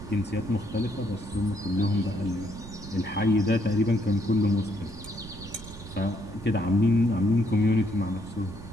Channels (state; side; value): noise; right; rumble, 14 dB below the sound